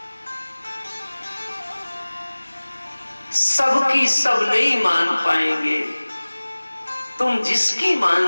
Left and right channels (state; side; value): inverted; both; correlation -1.00